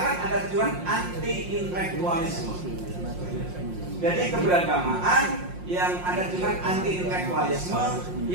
ada tujuan anti-intelektualisme. Jadi keberagamaan yang ada tujuan anti-intelektualisme,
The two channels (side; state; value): left; late; 5.6 ms